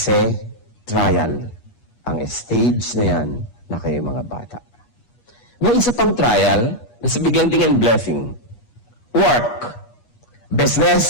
trial ang stage na yan na kayo mga bata. May isa pang trial na sa biglang tingin blessing. Work,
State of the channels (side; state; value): right; late; 8.3 ms